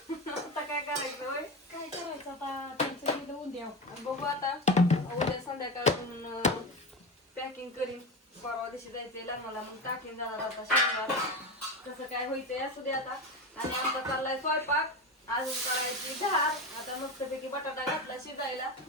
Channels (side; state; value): both; normal; correlation 0.21